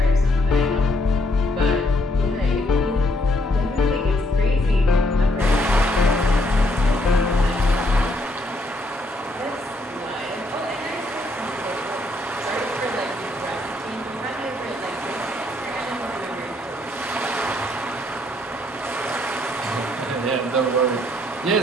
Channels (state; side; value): normal; both; correlation 0.71